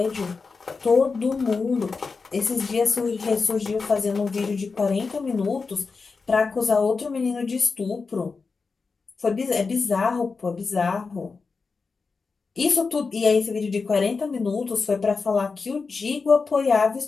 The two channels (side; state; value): right; quieter; 4.6 dB